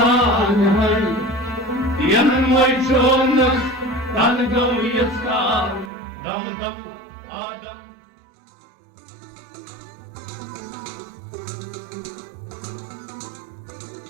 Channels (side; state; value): left; drops out; at 5.9 s